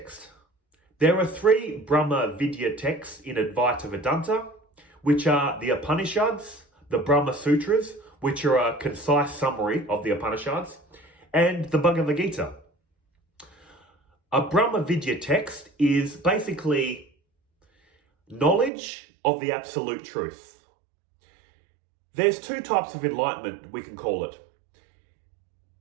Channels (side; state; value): left; drops out; at 18.7 s